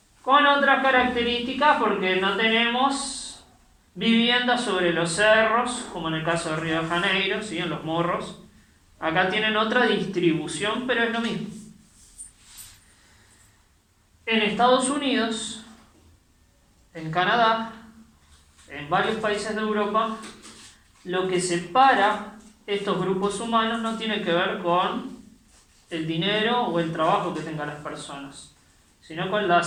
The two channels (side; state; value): both; identical; correlation 1.00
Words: Con otras características, porque no tenemos viviendas sobre los cerros, como en el caso de Río de Janeiro, ¿sí? En los morros. Acá tienen otra distribución, pero es lo mismo. En Estados Unidos, en Canadá, en varios países de Europa, lo que separa estos grupos humanos no tiene que ver con el dinero o el trabajo que tengan las personas, sino con la